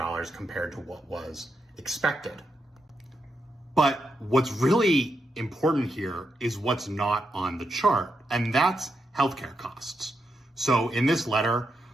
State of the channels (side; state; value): both; normal; correlation 0.83